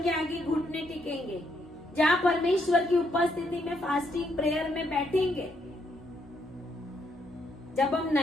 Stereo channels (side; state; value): both; normal; correlation 0.75